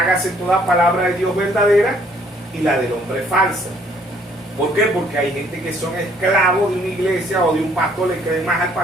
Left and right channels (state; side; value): normal; both; correlation 0.63